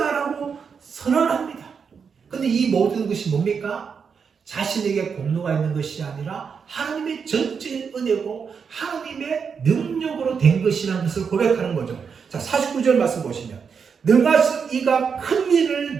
선언합니다. 근데 이 모든 것이 뭡니까? 자신에게 공로가 있는 것이 아니라 하나님의 전적인 은혜고 하나님의 능력으로 된 것이라는 것을 고백하는 거죠. 자, 49절 말씀 보시면 능하신 이가 큰 일을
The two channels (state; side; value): quieter; left; 6.2 dB